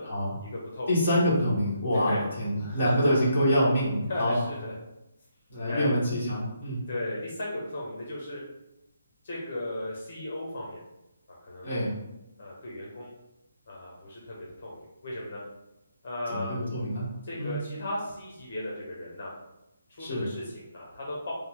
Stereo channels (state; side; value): inverted; both; correlation -0.74